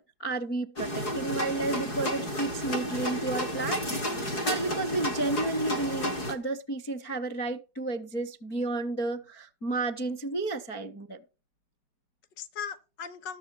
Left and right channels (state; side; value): late; right; 4.8 ms